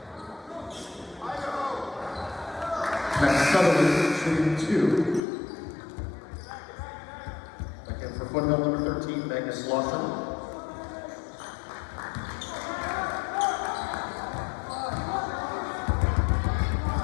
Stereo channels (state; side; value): drops out; right; at 5.2 s